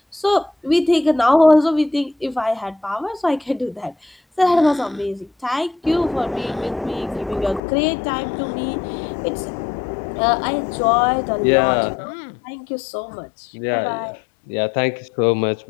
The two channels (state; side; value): drops out; right; at 7.6 s